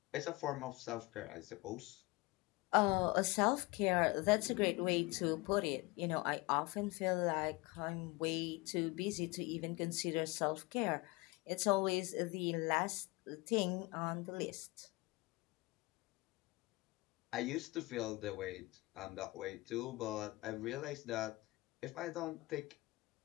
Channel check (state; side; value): quieter; right; 23.2 dB